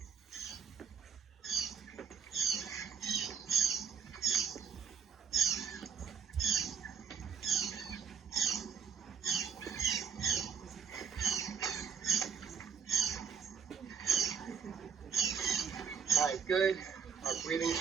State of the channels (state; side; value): quieter; left; 6.9 dB